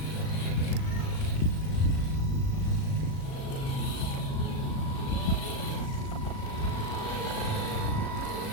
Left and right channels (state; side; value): late; right; 38 ms